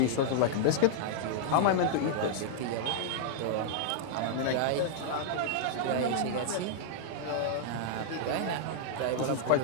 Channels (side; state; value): both; different; correlation -0.01